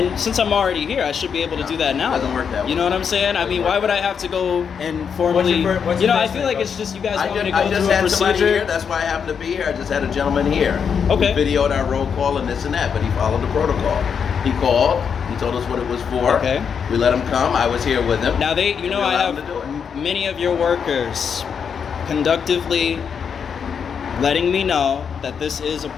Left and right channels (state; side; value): quieter; right; 6.9 dB